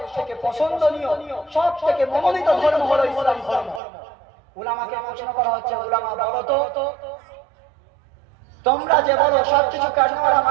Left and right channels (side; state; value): left; drops out; at 3.8 s